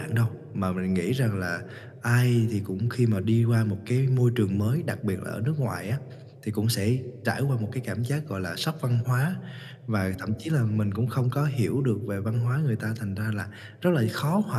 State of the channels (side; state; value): both; identical; correlation 1.00